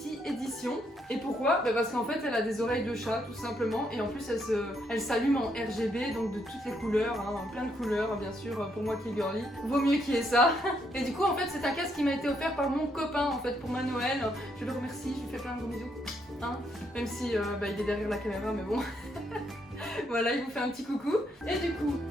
Edition. Et pourquoi? Parce qu'en fait elle a des oreilles de chat tout simplement et en plus elle s'allume en RGB, donc de toutes les couleurs, hein, plein de couleurs bien sûr, pour moi qui est girly. Vaut mieux qu'il y ait ça. Et du coup en fait c'est un casque qui m'a été offert par mon copain en fait pour ma Noël. Je le remercie, je lui fais plein de gros bisous. Hein, même si il est derrière la caméra mais bon. Voilà, il vous fait un petit coucou. Et du coup,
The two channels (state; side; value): normal; both; correlation 0.75